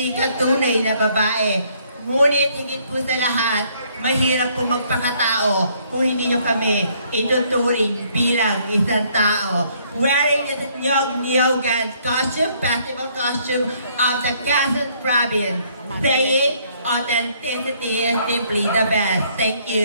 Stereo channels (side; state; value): both; inverted; correlation -0.66